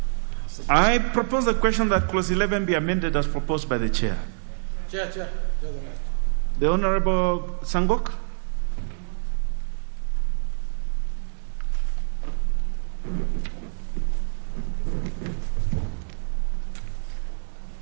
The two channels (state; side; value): silent; left; digital silence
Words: I propose the question that clause 11 be amended as proposed by the chair. Chair. The Honorable Sangok.